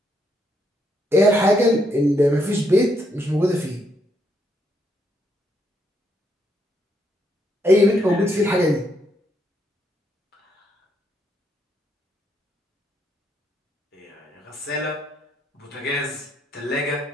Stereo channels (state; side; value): normal; both; correlation 0.75